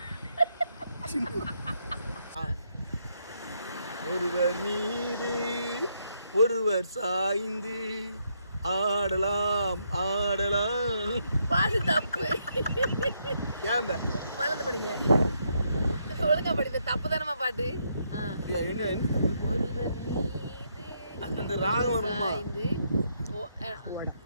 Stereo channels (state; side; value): inverted; both; correlation -0.76